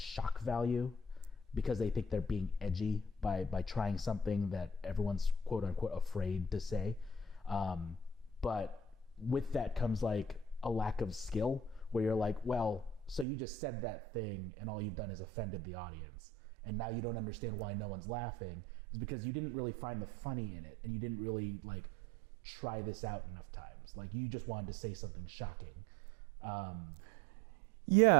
value, because they think they're being edgy by trying something that everyone's quote unquote afraid to say. But with that comes like a lack of skill, where you're like, well, so you just said that thing and all you've done is offended the audience, and now you don't understand why no one's laughing. It's because you didn't really find the funny in it, and you didn't really like try this out enough times. Like, you just wanted to say something shocking. What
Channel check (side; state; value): left; drops out; at 13.2 s